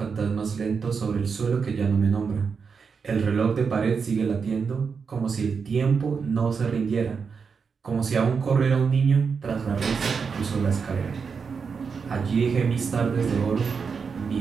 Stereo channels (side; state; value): left; quieter; 5.7 dB